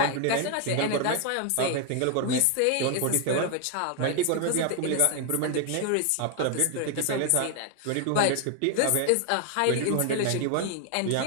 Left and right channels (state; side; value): different; both; correlation 0.01